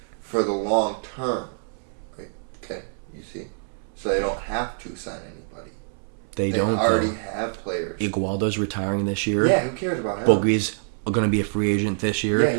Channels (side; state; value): left; silent; 62 dB below the other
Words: for the long term. Okay, you see? So they don't have to sign anybody. They already have players. Iguodala's retiring this year. Yeah, who cares about him? Boogie's going to be a free agent this year. Yeah,